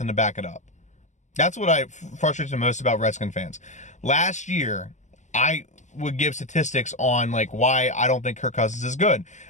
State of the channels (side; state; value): right; late; 0.35 ms